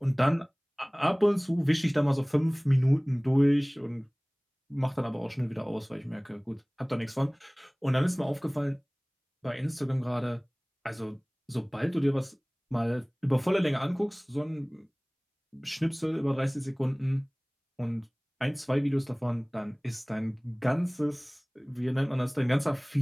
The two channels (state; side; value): identical; both; correlation 1.00